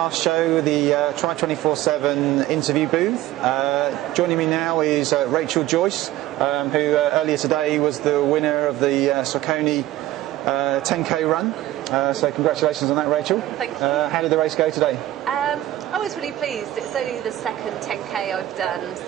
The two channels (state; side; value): quieter; left; 15.0 dB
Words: show, the Tri247 interview booth. Joining me now is Rachel Joyce, who earlier today was the winner of the Saucony 10k run. So congratulations on that, Rachel. Thank you. How did the race go today? I was really pleased. It's only the second 10k I've done,